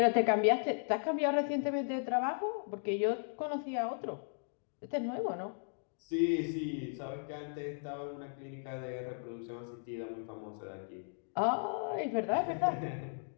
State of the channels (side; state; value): right; silent; digital silence